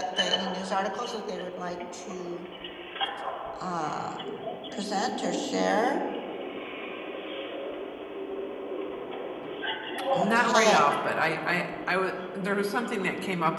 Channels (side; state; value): both; identical; correlation 1.00